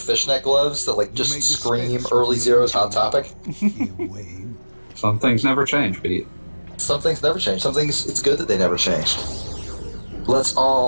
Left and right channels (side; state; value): both; inverted; correlation -1.00